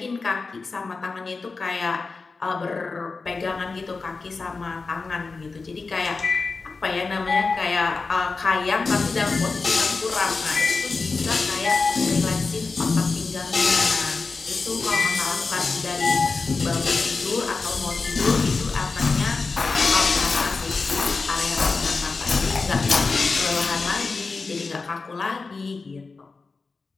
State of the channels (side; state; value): right; quieter; 4.2 dB